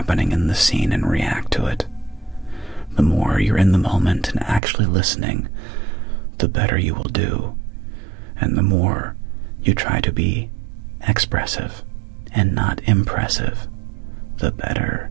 in the scene and react to it. The more you're in the moment and actually listening, the better you will do. And the more you try to be expressive and not impressive, the better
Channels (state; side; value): drops out; left; at 4.6 s